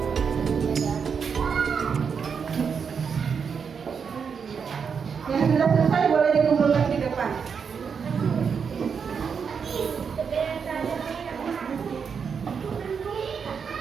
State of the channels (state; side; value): quieter; left; 6.4 dB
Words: Yang sudah selesai boleh dikumpulkan di depan.